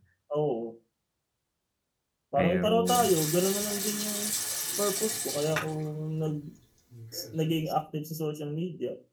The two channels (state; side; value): identical; both; correlation 1.00